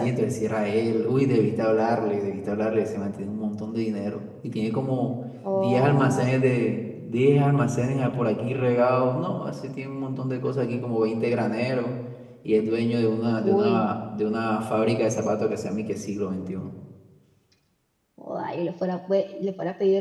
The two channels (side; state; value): both; identical; correlation 1.00